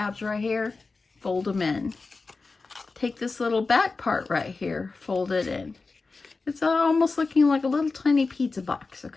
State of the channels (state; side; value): quieter; right; 4.0 dB